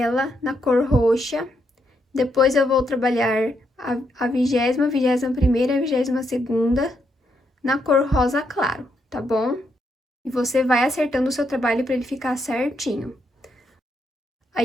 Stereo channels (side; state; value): both; normal; correlation 0.78